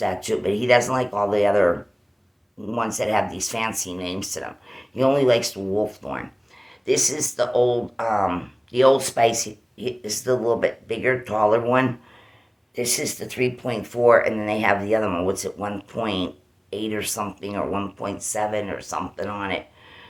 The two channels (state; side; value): identical; both; correlation 1.00